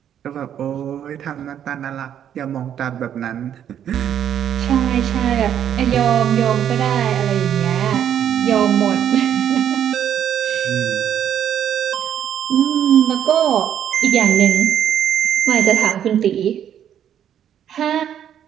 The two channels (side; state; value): left; quieter; 9.6 dB